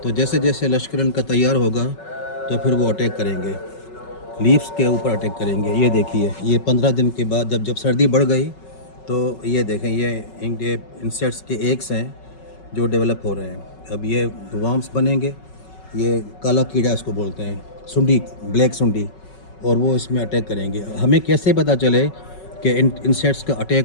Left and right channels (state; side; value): late; right; 5.3 ms